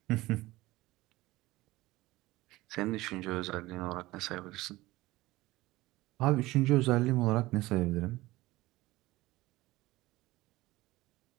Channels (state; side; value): quieter; left; 18.8 dB